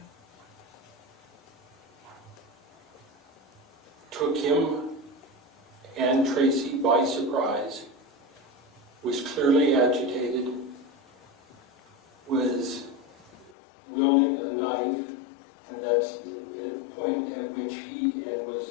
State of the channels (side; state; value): right; drops out; at 13.6 s